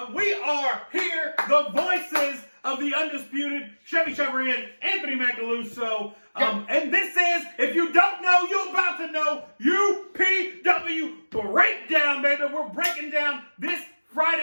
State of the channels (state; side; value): inverted; both; correlation -1.00